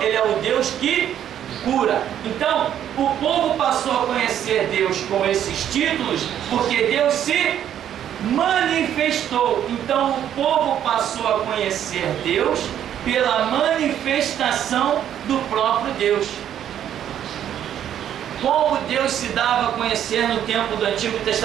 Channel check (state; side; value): quieter; left; 10.3 dB